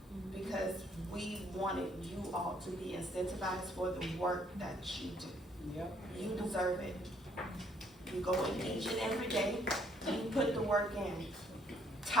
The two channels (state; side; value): normal; both; correlation 0.65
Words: because we wanted you all to be incentivized for the work that you do. Yep. You deserve it. You go in each and every day, and you put the work in.